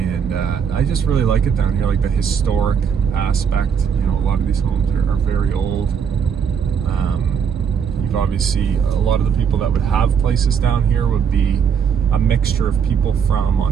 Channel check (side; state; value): left; quieter; 7.1 dB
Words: I just really like it down here, like the historic aspect. You know, a lot of these homes are very old. You've obviously, a lot of the people that would have places down here would be a mixture of people from